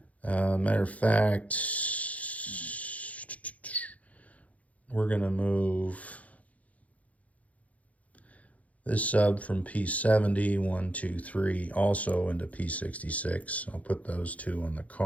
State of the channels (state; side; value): late; right; 0.069 ms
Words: Matter of fact, we're going to move this sub from P70, 1, 2, 3, also into P66. I'll put those 2 on the